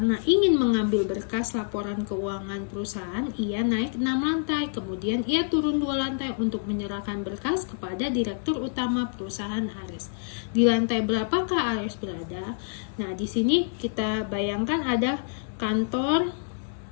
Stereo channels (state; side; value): silent; right; digital silence